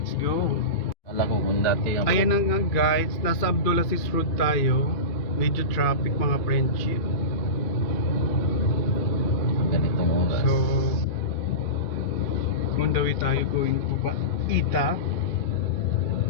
go. Alam ko kung dati ang Ayan na nga guys, nasa Abdulaziz Road tayo. Medyo traffic mga friendship. ganitong oras. So, on the way tayo going to Ita.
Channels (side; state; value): right; late; 2.5 ms